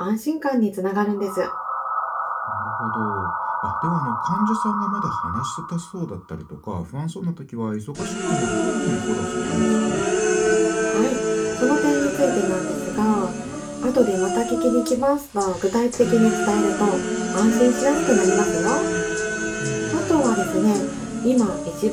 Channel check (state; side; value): identical; both; correlation 1.00